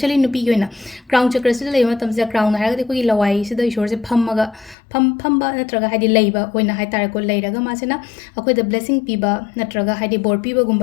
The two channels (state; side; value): drops out; right; at 4.8 s